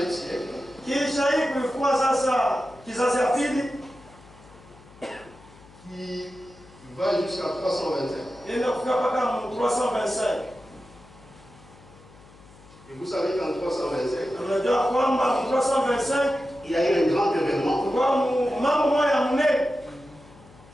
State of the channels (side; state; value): left; noise; hum, 23 dB below the sound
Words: siècle. sasa kizazi ya pili qui va jusqu'à 325. inaenda kufika mpaka 325. Et vous savez qu'en 325, Unajua kwamba 325 il y a eu un grand événement kwa mambo moja mnene